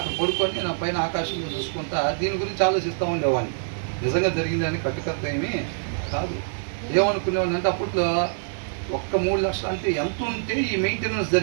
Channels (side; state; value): left; silent; digital silence